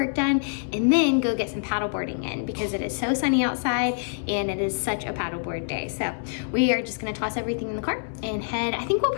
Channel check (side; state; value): right; silent; 61 dB below the other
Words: done and then go get some paddleboarding in because it is so sunny outside and it is such a paddleboard day. So we are just going to toss everything in the car and head. I think we'll